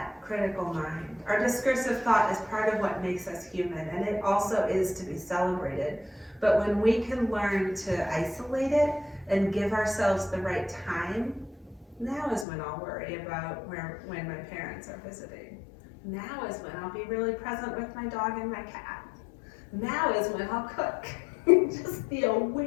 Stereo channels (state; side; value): drops out; right; at 12.5 s